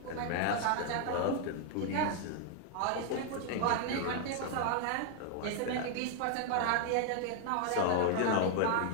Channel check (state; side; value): different; both; correlation 0.00